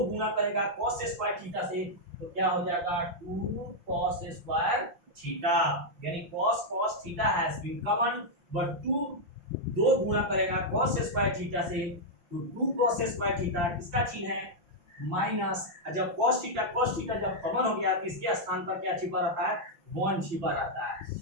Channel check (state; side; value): late; left; 5.8 ms